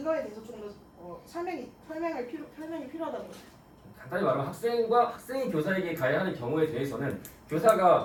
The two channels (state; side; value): identical; both; correlation 1.00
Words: 대해서 좀 더 설명이 필요하다는 거죠. 간단히 말하면 학생이 교사에게 가해하는 경우에 대해서는